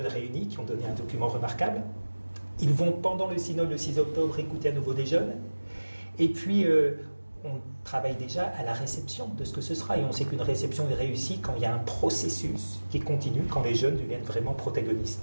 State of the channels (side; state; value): both; inverted; correlation -1.00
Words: réunis qui ont donné un document remarquable. Ils vont pendant le synode le 6 octobre écouter à nouveau des jeunes. Et puis on travaille déjà à la réception de ce que ce sera. Et on sait qu'une réception est réussie quand il y a un processus qui continue, quand les jeunes deviennent vraiment protagonistes.